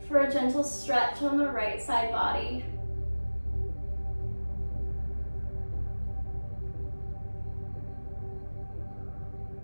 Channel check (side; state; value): both; inverted; correlation -1.00